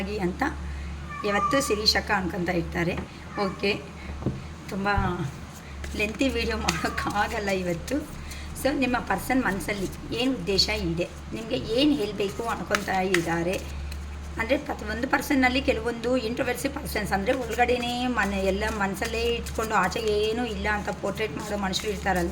ಅಂತ ಯಾವತ್ತೂ ಶಿರೀಷಕ ಅನ್ಕೊತಾ ಇರ್ತಾರೆ. ಓಕೆ, ತುಂಬ ಲೆಂತಿ ವೀಡಿಯೋ ಮಾಡೋಕ್ಕಾಗಲ್ಲ ಇವತ್ತು. ಸೊ ನಿಮ್ಮ ಪರ್ಸನ್ ಮನಸ್ಸಲ್ಲಿ ಏನು ಉದ್ದೇಶ ಇದೆ, ನಿಮಗೆ ಏನು ಹೇಳಬೇಕು ಅನ್ಕೊತಾ ಇದ್ದಾರೆ ಅಂದರೆ ಪ್ರತಿಯೊಂದು ಪರ್ಸನ್ನಲ್ಲಿ ಕೆಲವೊಂದು ಇಂಟ್ರೋವರ್ಸಿ ಪರ್ಸನ್ಸ್ ಅಂದರೆ ಒಳಗಡೆನೇ ಎಲ್ಲ ಮನಸ್ಸಲ್ಲೇ ಇಟ್ಕೊಂಡು ಆಚೆಗೆ ಏನೂ ಇಲ್ಲ ಅಂತ ಪೋರ್ಟ್ರೇಟ್ ಮಾಡೋ ಮನುಷ್ಯರು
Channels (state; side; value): identical; both; correlation 1.00